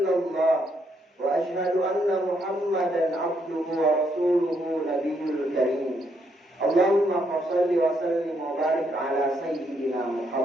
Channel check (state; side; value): normal; both; correlation 0.75